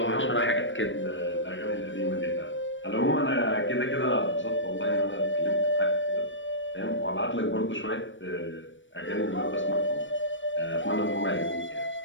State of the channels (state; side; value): late; right; 0.56 ms